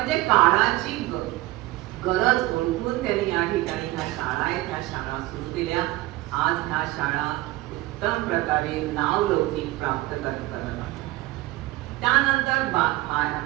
काळाची गरज ओळखून त्यांनी या ठिकाणी ह्या शाळा आहेत ह्या शाळा सुरू केल्या. आज ह्या शाळा उत्तम प्रकारे नावलौकिक प्राप्त करत आहेत. त्यानंतर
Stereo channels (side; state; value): left; quieter; 18.6 dB